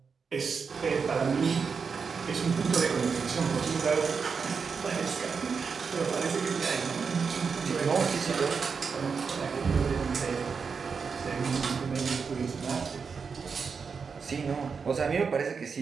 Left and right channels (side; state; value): left; quieter; 5.6 dB